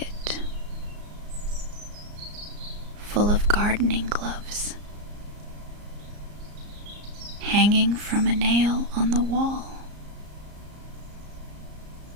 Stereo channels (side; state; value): left; late; 34 ms